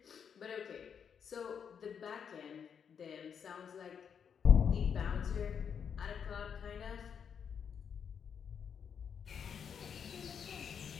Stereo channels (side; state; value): right; quieter; 7.3 dB